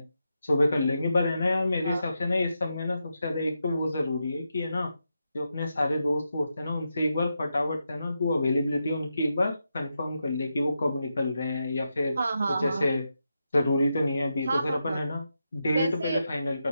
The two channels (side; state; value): both; inverted; correlation -0.86